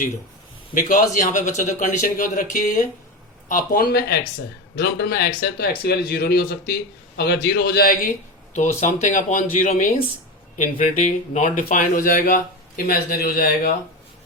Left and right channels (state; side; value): normal; both; correlation 0.21